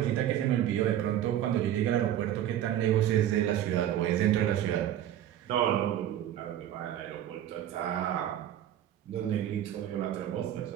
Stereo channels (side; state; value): left; quieter; 11.5 dB